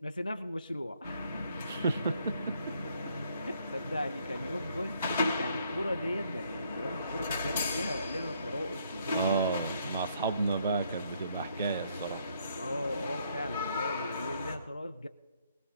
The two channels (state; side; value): inverted; both; correlation -0.69